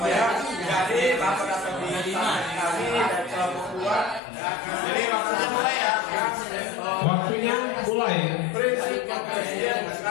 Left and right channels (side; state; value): right; drops out; at 4.2 s